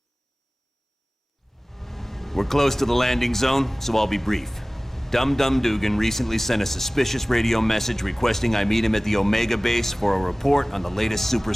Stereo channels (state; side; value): normal; both; correlation 0.98